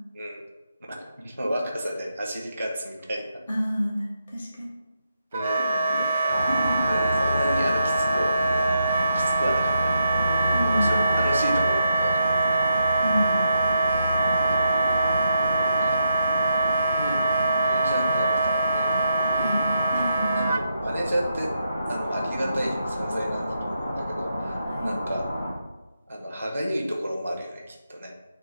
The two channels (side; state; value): both; inverted; correlation -0.82